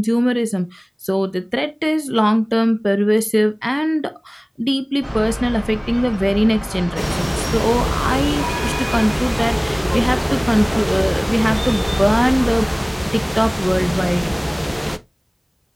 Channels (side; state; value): both; identical; correlation 1.00